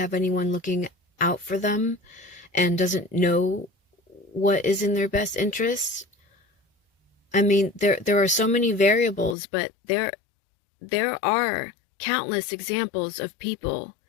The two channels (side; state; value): right; drops out; at 9.3 s